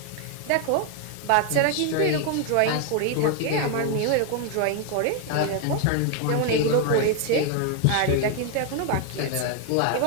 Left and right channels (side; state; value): both; different; correlation 0.01